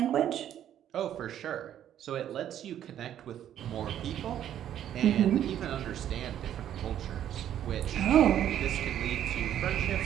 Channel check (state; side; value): quieter; left; 10.8 dB